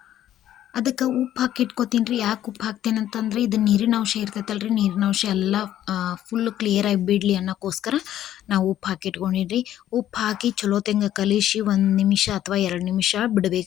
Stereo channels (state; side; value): quieter; right; 12.0 dB